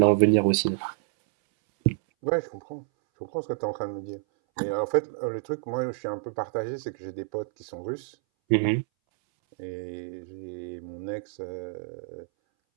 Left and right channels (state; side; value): silent; left; 59 dB below the other